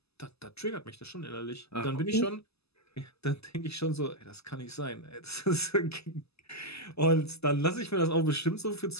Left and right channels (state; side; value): late; right; 0.79 ms